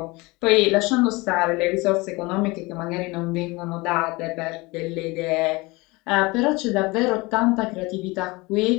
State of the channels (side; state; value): right; quieter; 23.7 dB